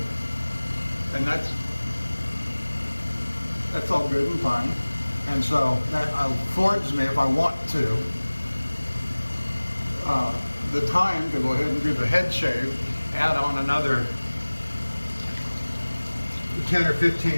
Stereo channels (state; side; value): inverted; both; correlation -1.00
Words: And that's all good and fine. And so that affords me, if I want to, the time to go ahead and do the head shave, add on another 10 or